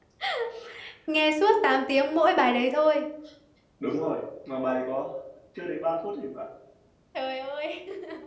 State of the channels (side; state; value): both; identical; correlation 1.00